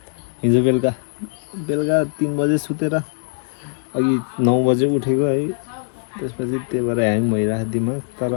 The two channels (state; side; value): silent; right; 65 dB below the other